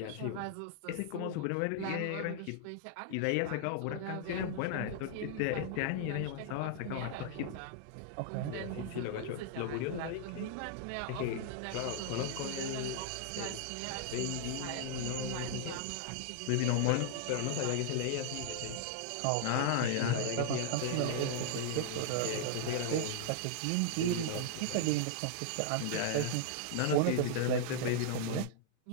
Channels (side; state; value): both; different; correlation -0.01